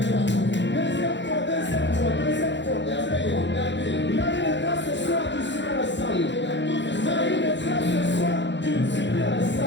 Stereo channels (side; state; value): right; late; 0.52 ms